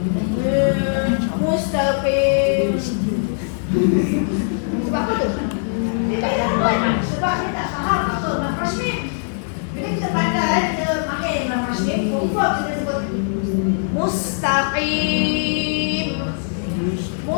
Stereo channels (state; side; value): silent; right; digital silence